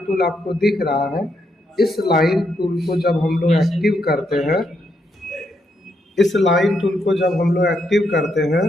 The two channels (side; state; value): both; normal; correlation 0.79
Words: टूल आपको दिख रहा है, इस लाइन टूल को जब हम लोग एक्टिव करते हैं, इस लाइन टूल को जब हम लोग एक्टिव करते हैं